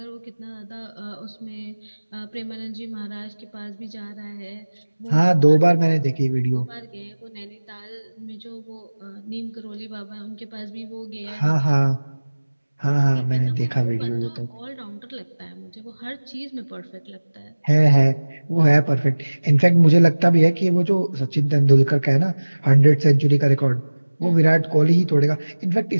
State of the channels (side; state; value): both; inverted; correlation -1.00